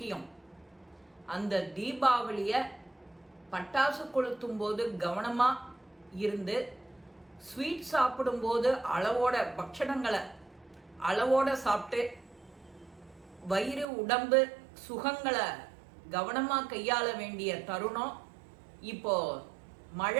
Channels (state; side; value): drops out; left; at 13.9 s